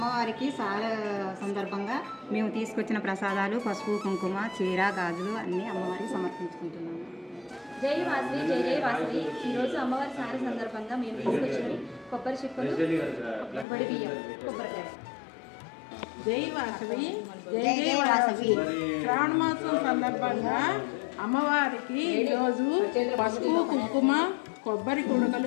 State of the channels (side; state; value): right; drops out; at 13.7 s